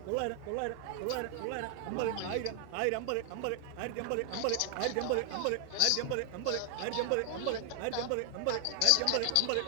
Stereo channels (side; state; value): both; different; correlation 0.00